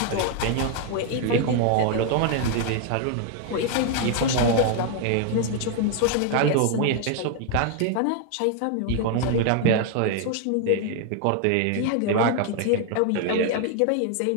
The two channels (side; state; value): both; different; correlation 0.00